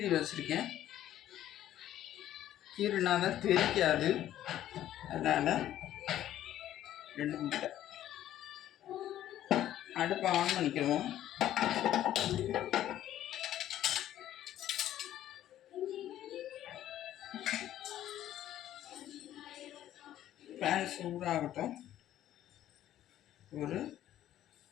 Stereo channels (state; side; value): quieter; right; 12.4 dB